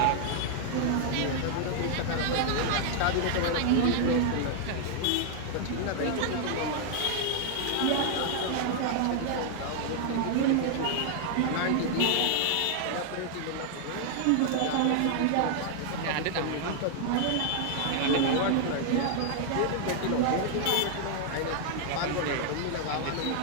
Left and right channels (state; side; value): different; both; correlation 0.00